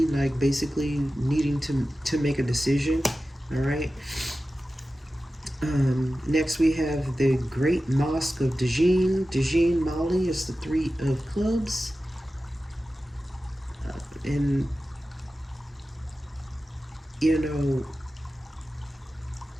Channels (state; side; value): normal; both; correlation 0.94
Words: like basically needing to make a decision. All right. Next we have the Great Mosque of Dajin, Mali is the Three of Clubs. And, you know,